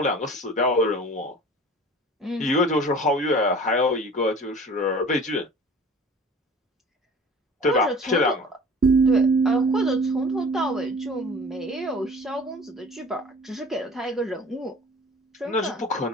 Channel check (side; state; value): both; normal; correlation 0.44